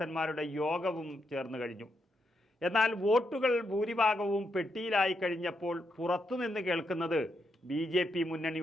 യോഗവും ചേർന്നു കഴിഞ്ഞു. എന്നാൽ വോട്ടുകൾ ഭൂരിഭാഗവും പെട്ടിയിലായി കഴിഞ്ഞപ്പോൾ പുറത്തുനിന്ന് കേൾക്കുന്നത് BJP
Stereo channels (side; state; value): both; normal; correlation 0.81